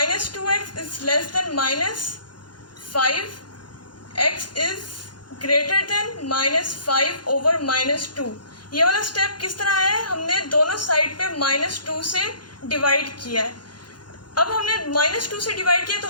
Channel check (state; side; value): late; right; 0.71 ms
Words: 2x is less than minus 5x is greater than minus 5 over minus 2। ये वाला स्टेप किस तरह है, हमने दोनों साइड पे माइनस 2 से डिवाइड किया है। अब हमने माइनस 2 से डिवाइड किया तो